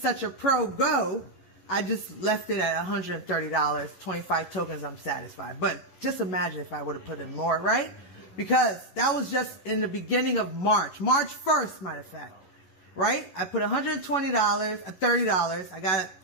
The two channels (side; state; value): right; late; 11 ms